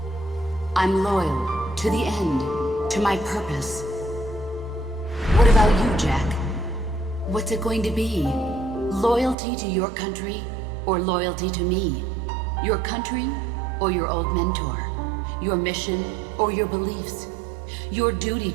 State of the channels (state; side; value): drops out; left; at 9.3 s